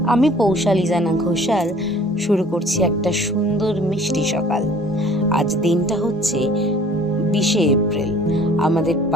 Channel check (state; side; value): normal; both; correlation 0.52